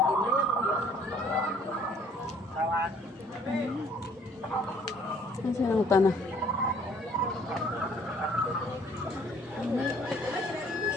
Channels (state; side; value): normal; both; correlation 0.59